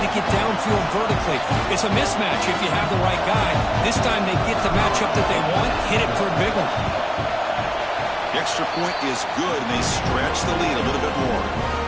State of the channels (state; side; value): identical; both; correlation 1.00